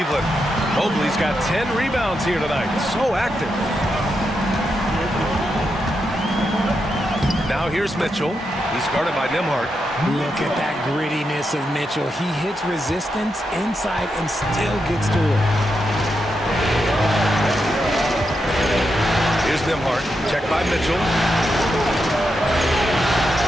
Mobley's got 10 rebounds here tonight. So active. Now here's Mitchell. He's guarded by Nimhard. Look at that grittiness of Mitchell. He hits resistance inside and still gets to it. Here's Nimhard. Checked by Mitchell.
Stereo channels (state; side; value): normal; both; correlation 0.85